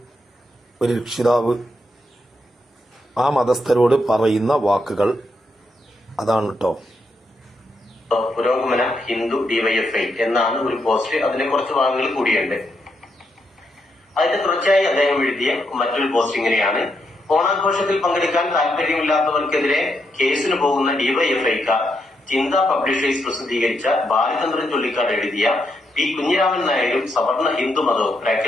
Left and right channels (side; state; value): both; normal; correlation 0.80